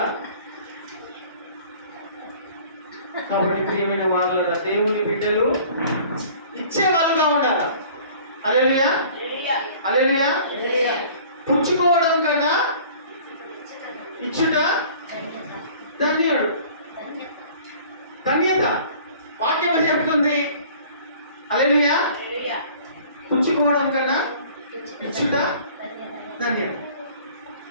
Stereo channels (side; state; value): both; inverted; correlation -0.49